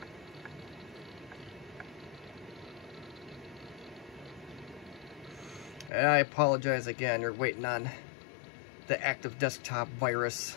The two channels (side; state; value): right; drops out; at 5.9 s